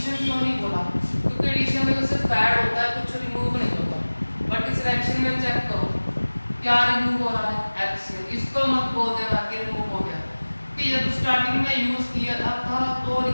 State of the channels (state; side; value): inverted; both; correlation -1.00